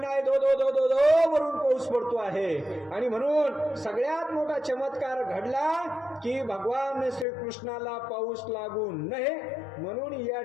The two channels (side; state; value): right; drops out; at 7.2 s